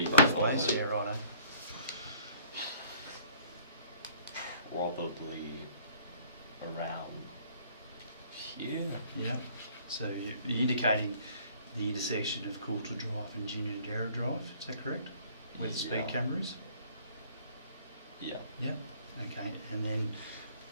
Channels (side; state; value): both; inverted; correlation -0.55